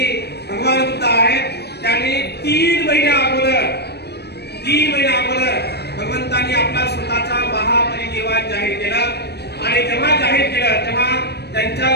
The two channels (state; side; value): late; right; 0.48 ms